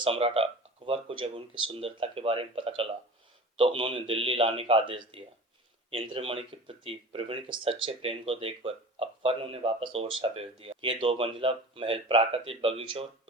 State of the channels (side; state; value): both; normal; correlation 0.37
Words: अकबर को जब उनकी सुंदरता के बारे में पता चला तो उन्होंने दिल्ली लाने का आदेश दिया। इंद्रमणि के प्रति प्रवीण के सच्चे प्रेम को देखकर अकबर ने उन्हें वापस ओरछा भेज दिया। ये 2 मंजिला महल प्राकृतिक बगीचों और